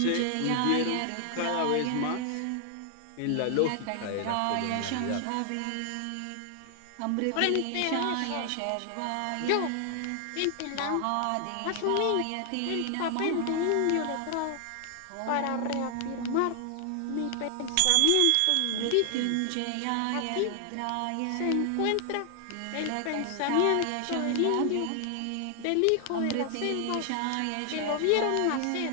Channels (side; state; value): both; different; correlation 0.00